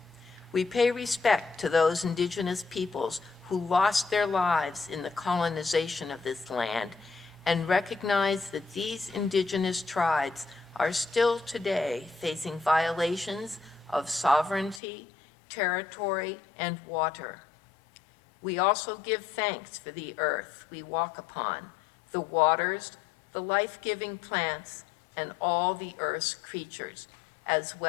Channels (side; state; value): right; drops out; at 14.8 s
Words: We pay respect to those indigenous peoples who lost their lives in the colonization of this land and recognize that these indigenous tribes are still today facing violations of sovereignty, territory, and water. We also give thanks for the earth we walk upon, the waters, the life-giving plants, and all the earth's creatures, as